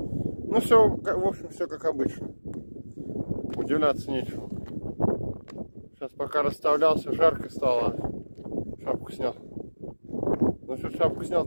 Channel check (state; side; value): inverted; both; correlation -1.00